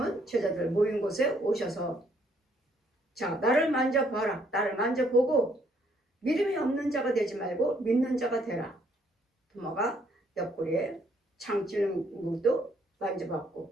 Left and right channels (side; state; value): both; normal; correlation 0.68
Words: 제자들 모인 곳에 오셔서 자 나를 만져봐라. 나를 만져보고 믿음이 없는 자가 되지 말고 믿는 자가 되라. 도마가 옆구리에 창 찌르는 것도